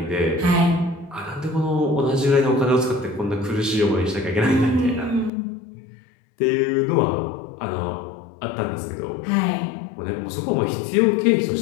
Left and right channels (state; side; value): drops out; right; at 5.3 s